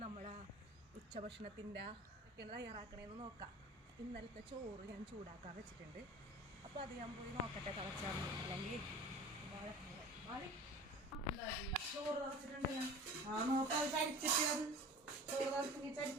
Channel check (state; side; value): normal; both; correlation 0.39